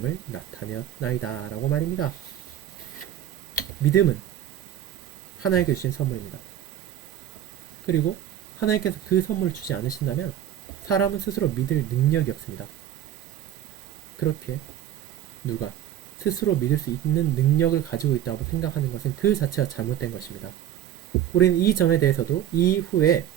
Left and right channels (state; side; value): quieter; left; 11.1 dB